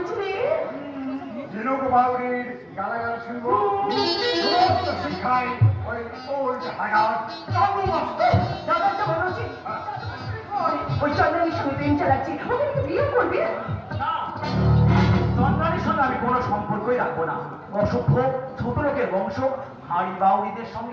ঝিনুক বাউরির গালাগাল শুনবো, সমস্ত শিক্ষায় ওই ওল্ড হাগার দাদাটা বলো যে ওই চন্দ্রনীর সঙ্গে প্রেম চালাচ্ছি, ওকে একটু বিয়ে করবে? চন্দ্রানীর সঙ্গে আমি কোনো সম্পর্কই রাখবো না। অসভ্য ছোট লোকের বংশ, হাড়ি বাউরিদের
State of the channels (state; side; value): identical; both; correlation 1.00